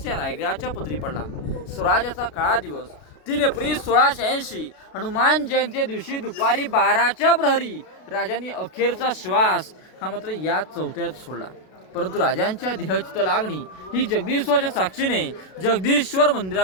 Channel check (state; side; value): late; right; 32 ms